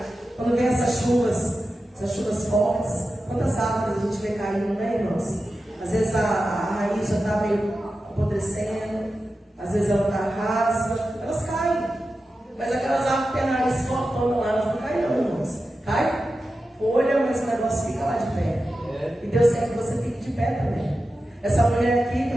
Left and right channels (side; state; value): both; normal; correlation 0.92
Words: Quando vem essas chuvas fortes, quantas árvores a gente vê caindo, né, irmãos? Às vezes a raiz já está meio apodrecendo, às vezes ela está rasa, elas caem. Mas aquelas árvores que têm a raiz fortona lá, elas não caem não, irmãos. Cai folha, mas o negócio irmãos, fica lá de pé. E Deus quer que você fique de pé também. Essa mulher aqui, estou